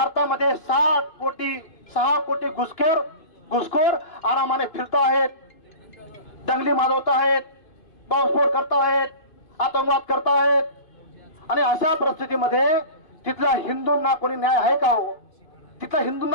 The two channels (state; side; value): late; right; 2.5 ms